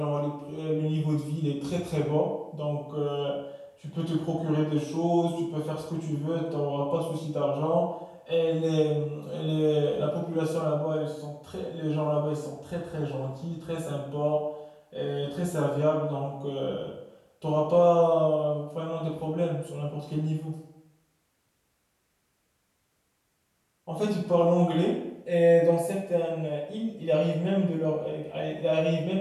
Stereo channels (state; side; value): identical; both; correlation 1.00